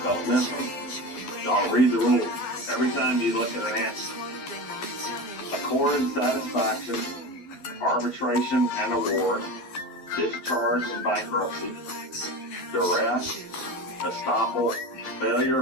don't miss them. Y'all read the rules. Every time you look at an answer. Accord and satisfaction, arbitration and award, discharge and bankruptcy, duress, estoppel, failure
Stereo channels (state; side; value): late; right; 12 ms